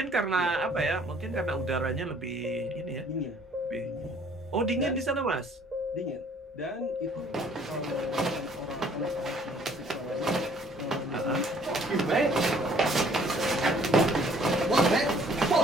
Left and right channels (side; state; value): both; normal; correlation 0.59